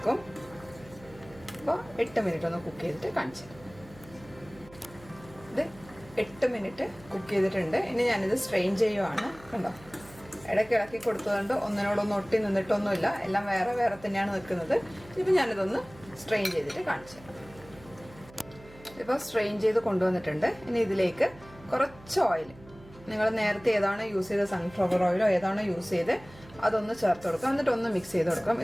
അപ്പോൾ 8 മിനിറ്റ് ഒന്ന് കുക്ക് ചെയ്തിട്ട് കാണിച്ചു. ഇത് 8 മിനിറ്റ് കുക്ക് ചെയ്തിട്ടുണ്ട്. ഇനി ഞാനിത് സ്ട്രെയിൻ ചെയ്യുവാണ്. കണ്ടോ, ഇടയ്ക്ക് ഇളക്കി കൊടുത്തതുകൊണ്ട് ഒന്നിനോടൊന്നും ഒട്ടി നിന്നിട്ടൊന്നുമില്ല. എല്ലാം വേറെ വേറെ തന്നെയാണ് നിൽക്കുന്നത്. ഇപ്പം ഞാനിതൊന്ന് സ്ട്രെയിൻ ചെയ്തിട്ട് കാണിച്ചു. ഇപ്പോൾ സ്ട്രെയിൻ ചെയ്ത് കൊണ്ടുവന്നിട്ടുണ്ട്. ഇനി ഇതിലേക്ക് കുറച്ച് ഓയിൽ, നിങ്ങൾ നേരത്തെ ഏതാണോ യൂസ് ചെയ്ത സൺഫ്ലവർ ഓയിലോ ഏതാണോ യൂസ് ചെയ്ത് അതൊന്ന് ചേർത്ത് കൊടുക്കാം. എന്നിട്ട് ഒന്ന് മിക്സ് ചെയ്ത് കൊടുക്കാം.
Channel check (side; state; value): right; noise; hum, 21 dB below the sound